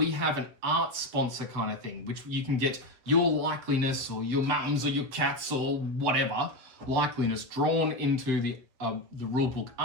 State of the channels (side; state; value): left; late; 7.9 ms